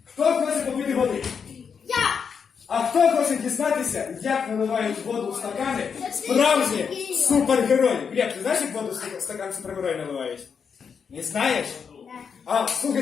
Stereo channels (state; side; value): quieter; right; 6.4 dB